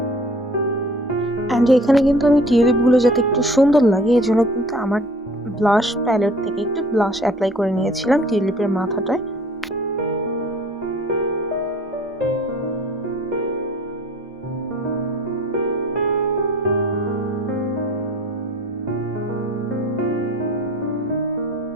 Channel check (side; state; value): both; normal; correlation 0.50